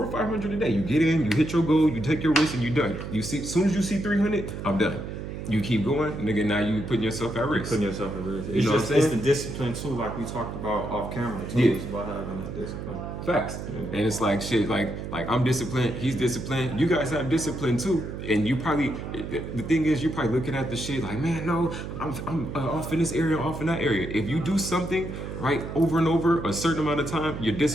or 500 a day. You get in, you hit your goal, you take your risk, and you're done. You see, as soon as you see 300, I'm done. You keep going, nigga. Now you putting yourself at risk. Putting yourself at risk. You know what I'm saying? It's the discipline too, like we talked about off camera too. Yeah. It's about having that discipline. Facts. Yeah. And it's like shit. Like I'm disciplined. He's disciplined. You guys have discipline too. And you probably, the thing is, you're probably looking at the shit like, man, no, I'm off in this area, off in that area. If you do something right over and over a certain amount of time, you're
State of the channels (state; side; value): noise; right; hum, 7 dB below the sound